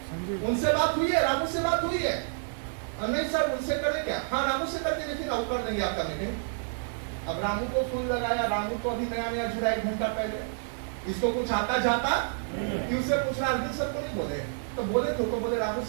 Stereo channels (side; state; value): left; silent; 59 dB below the other